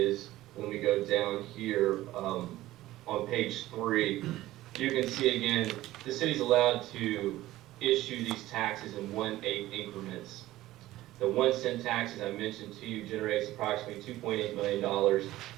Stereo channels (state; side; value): quieter; left; 16.1 dB